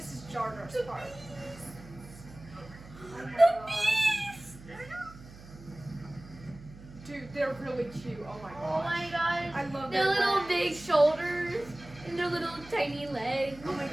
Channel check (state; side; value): noise; right; hum, 18 dB below the sound